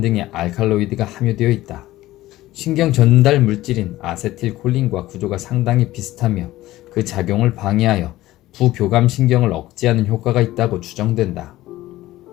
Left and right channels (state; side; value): quieter; right; 16.3 dB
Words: 등의 알칼로이드가 함유되어 있다. 신경 전달 물질인 아세틸콜린과 구조가 상당히 비슷하며 그 작용을 방해하여 부교감 신경을 억제하는 효과가 있다고 추정된다.